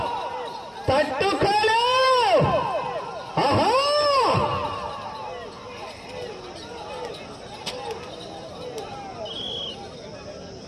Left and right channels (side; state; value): both; identical; correlation 1.00